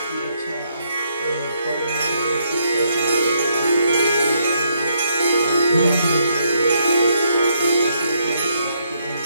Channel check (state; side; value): inverted; both; correlation -0.74